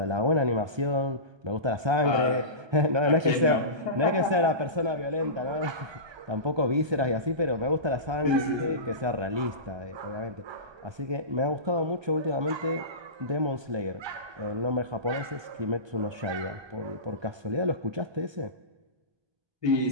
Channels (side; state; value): left; late; 1.2 ms